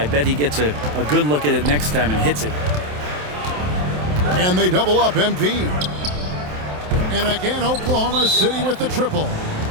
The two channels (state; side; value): late; left; 27 ms